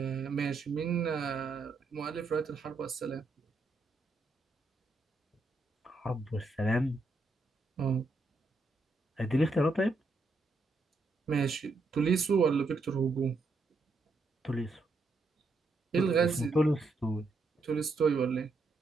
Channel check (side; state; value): left; quieter; 3.3 dB